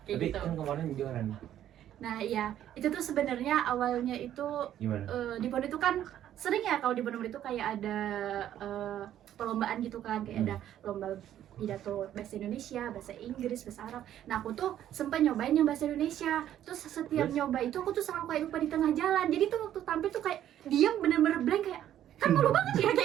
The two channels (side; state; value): left; quieter; 11.4 dB